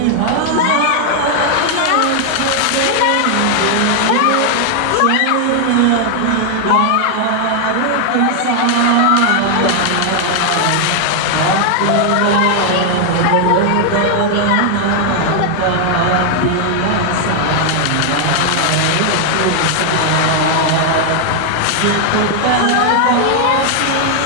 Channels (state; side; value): different; both; correlation 0.00